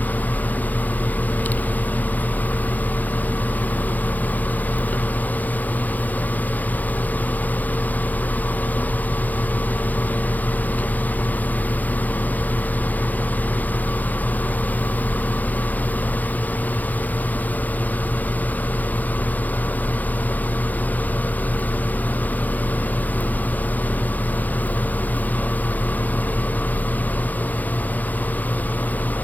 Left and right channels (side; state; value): right; late; 0.082 ms